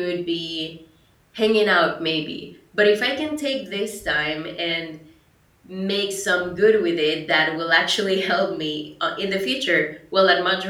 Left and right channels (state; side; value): identical; both; correlation 1.00